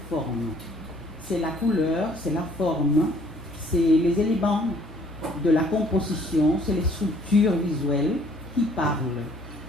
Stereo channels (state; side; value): normal; both; correlation 0.60